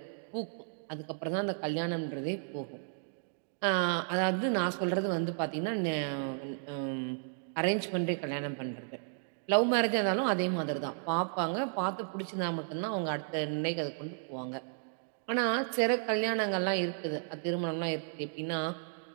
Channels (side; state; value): left; silent; digital silence